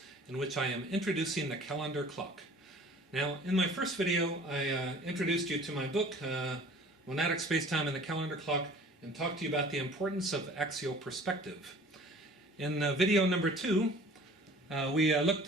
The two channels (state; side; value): normal; both; correlation 0.48